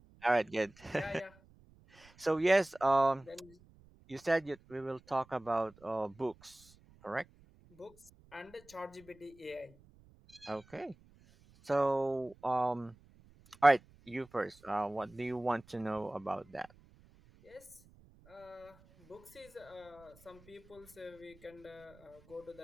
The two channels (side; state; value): right; noise; rumble, 26 dB below the sound